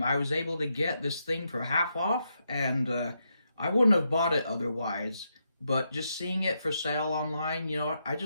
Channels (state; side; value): inverted; both; correlation -0.82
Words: was able to get this thing for half off, and I wouldn't have bought it otherwise, but just seeing it for sale online, you know what, I